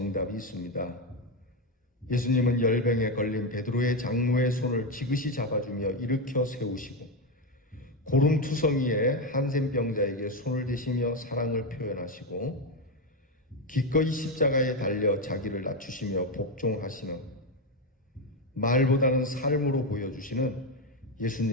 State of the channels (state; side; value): normal; both; correlation 0.09